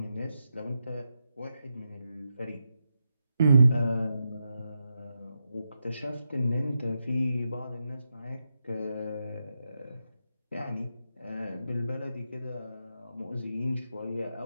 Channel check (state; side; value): inverted; both; correlation -0.86